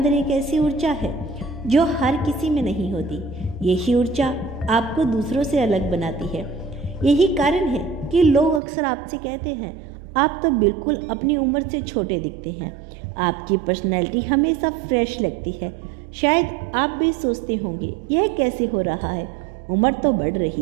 एक ऐसी ऊर्जा है जो हर किसी में नहीं होती। यही ऊर्जा आपको दूसरों से अलग बनाती है। यही कारण है कि लोग अक्सर आपसे कहते हैं आप तो बिल्कुल अपनी उम्र से छोटे दिखते हैं। आपकी पर्सनैलिटी हमेशा फ्रेश लगती है। शायद आप भी सोचते होंगे यह कैसे हो रहा है, उम्र तो बढ़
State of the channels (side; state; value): left; drops out; at 8.6 s